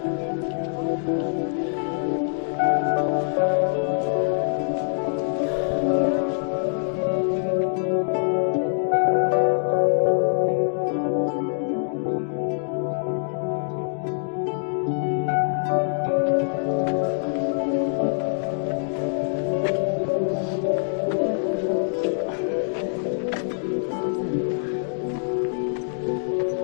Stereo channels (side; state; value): right; silent; digital silence